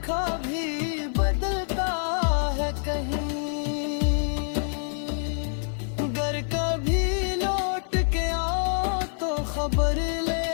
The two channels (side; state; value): right; silent; 61 dB below the other